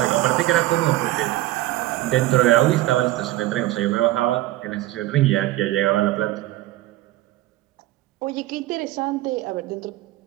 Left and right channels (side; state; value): left; quieter; 16.3 dB